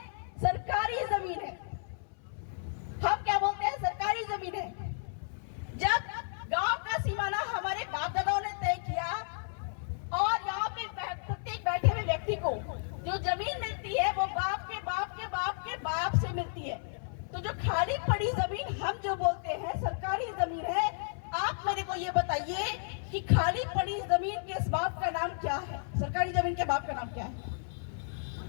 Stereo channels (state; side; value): silent; right; 56 dB below the other